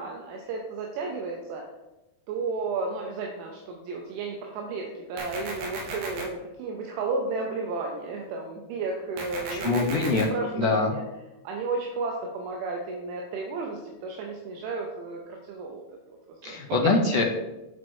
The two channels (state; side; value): late; left; 18 ms